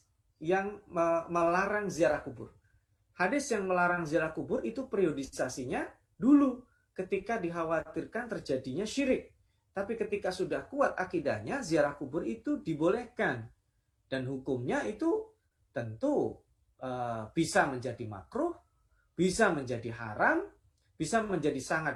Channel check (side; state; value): both; identical; correlation 1.00